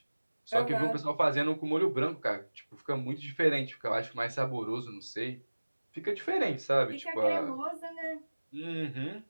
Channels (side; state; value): both; inverted; correlation -1.00